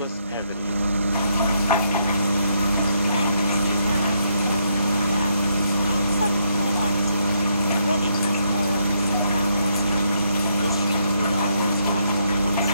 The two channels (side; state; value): both; inverted; correlation -0.75